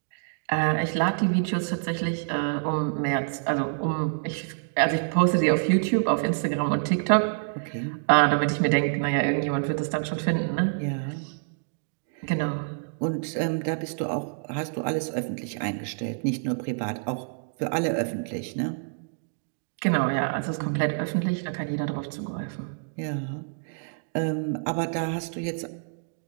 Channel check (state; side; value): silent; left; digital silence